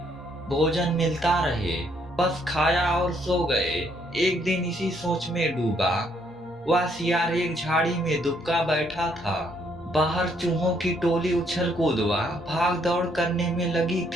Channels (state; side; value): normal; both; correlation 0.70